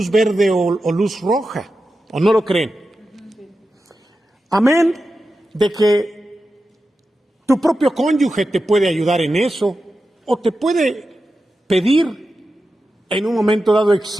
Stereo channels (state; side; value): normal; both; correlation 0.91